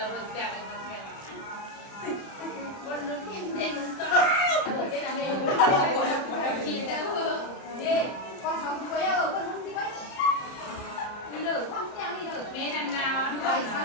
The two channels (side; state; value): right; late; 30 ms